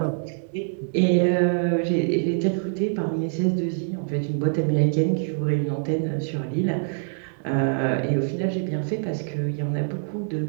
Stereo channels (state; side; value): silent; left; digital silence